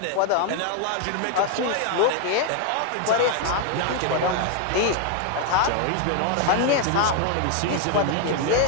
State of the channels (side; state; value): both; different; correlation 0.00